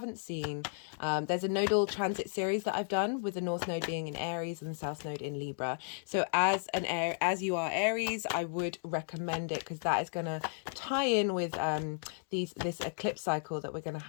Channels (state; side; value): silent; right; digital silence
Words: seen, there's a nodal transit series that I've done with the North Node being in Aries and the South Node in Libra. So as you are Aries, I would recommend it because that is going to tie in with this eclipse cycle that we're going to